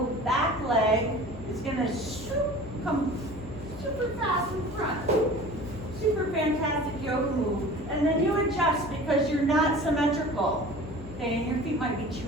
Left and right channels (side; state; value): left; noise; hum, 14 dB below the sound